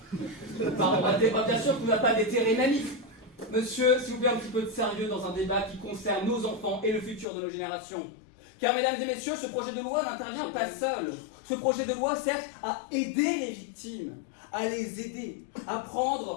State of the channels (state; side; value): drops out; right; at 7.2 s